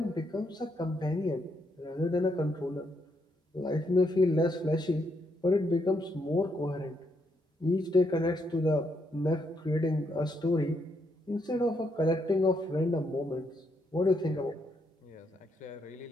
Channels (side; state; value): both; normal; correlation 0.77